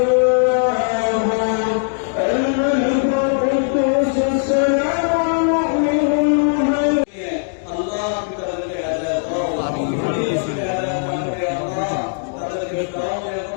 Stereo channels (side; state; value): right; silent; digital silence